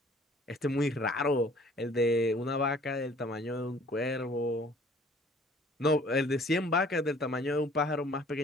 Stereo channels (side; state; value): both; normal; correlation 0.54